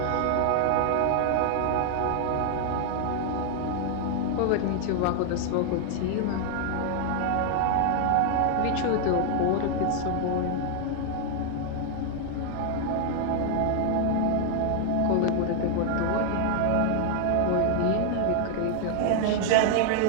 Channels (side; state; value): both; different; correlation 0.00